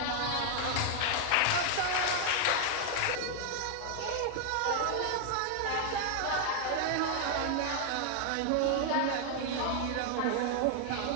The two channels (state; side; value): different; both; correlation 0.00